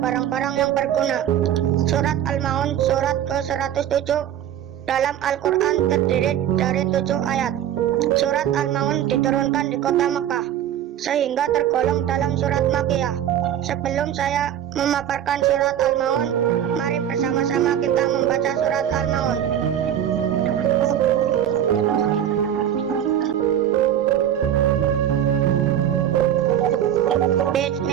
yang berguna. Surat Al-Maun surat ke-107 dalam Al-Quran terdiri dari 7 ayat. Surat Al-Maun diturunkan di kota Mekah, sehingga tergolong dalam surat Makkiyah. Sebelum saya memaparkan surat Al-Maun, mari bersama-sama kita membaca surat Al-Maun.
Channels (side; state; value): left; quieter; 10.4 dB